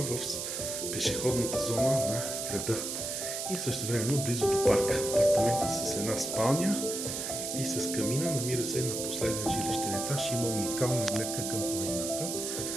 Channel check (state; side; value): noise; right; hiss, 4 dB below the sound